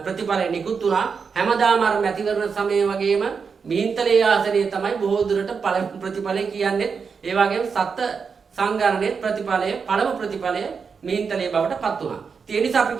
ප්‍රතිඵලය නිකුත් වුණා. හැමදාම අර මැතිවරණ සමය වගේම මිහින්තලේ ආසනයේ තමයි බොහෝ දුරට පළමු ප්‍රතිඵලය කියන්නේ. ඒ වගේම සත්ත්ව සංගණනයේ ප්‍රතිඵලය පළමු ප්‍රතිඵලය මිහින්තලේ බවට පත් වුණා. ඒ නිසා අපි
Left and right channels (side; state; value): left; quieter; 5.7 dB